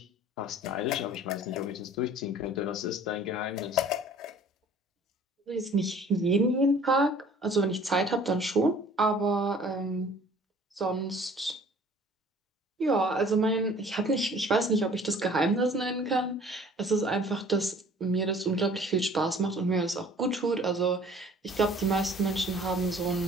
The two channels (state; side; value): normal; both; correlation 0.51